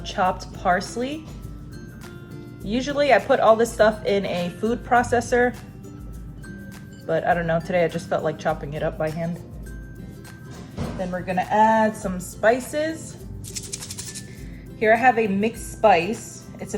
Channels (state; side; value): identical; both; correlation 1.00